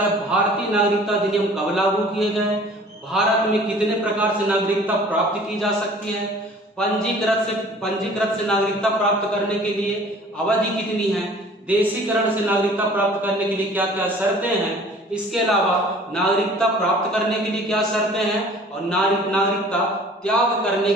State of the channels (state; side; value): normal; both; correlation 0.49